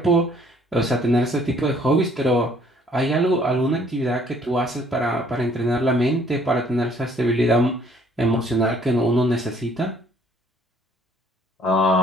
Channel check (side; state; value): both; normal; correlation 0.61